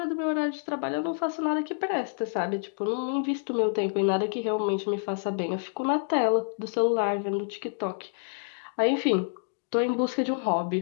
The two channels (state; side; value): silent; right; digital silence